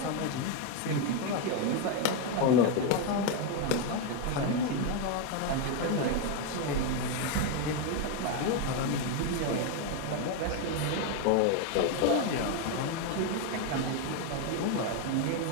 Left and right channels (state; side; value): different; both; correlation 0.02